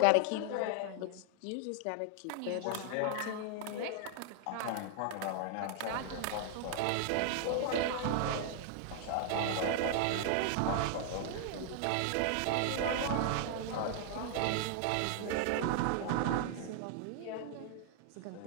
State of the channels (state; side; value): different; both; correlation 0.00